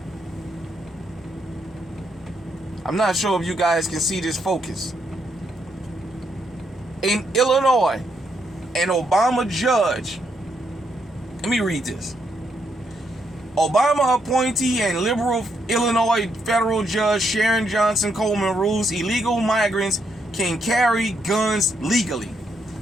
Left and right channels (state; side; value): normal; both; correlation 0.77